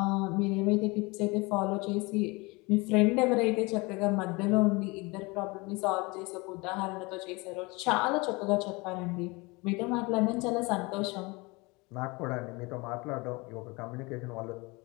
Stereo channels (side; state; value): right; quieter; 25.7 dB